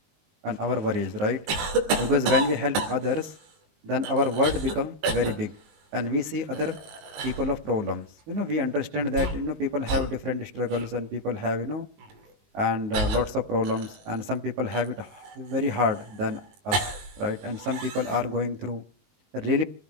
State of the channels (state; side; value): late; left; 20 ms